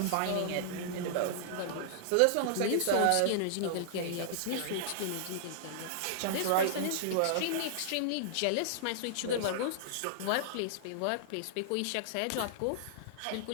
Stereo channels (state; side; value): different; both; correlation -0.01